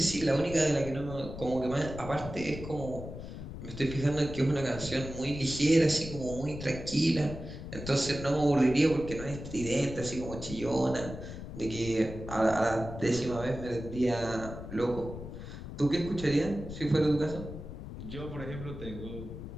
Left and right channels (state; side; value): noise; left; rumble, 10 dB below the sound